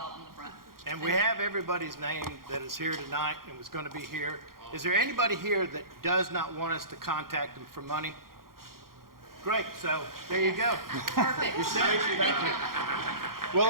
in the front. And we have everybody's name that is here tonight and was going to be here. Is there anybody here that does not want us to contact them for money? Great, so there you go. Perfect. You're set. Thank you. We'll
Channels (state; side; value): late; left; 0.92 ms